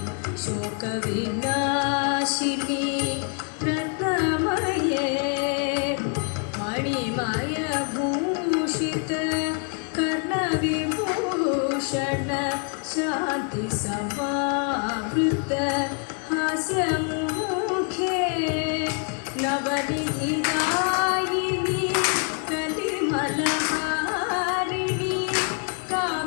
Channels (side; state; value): right; quieter; 38.6 dB